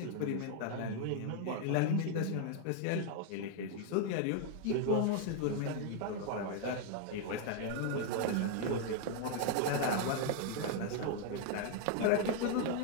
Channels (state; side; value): different; both; correlation 0.00